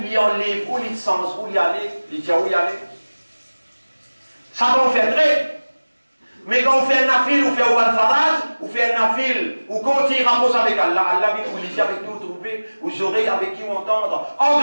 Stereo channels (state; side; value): inverted; both; correlation -1.00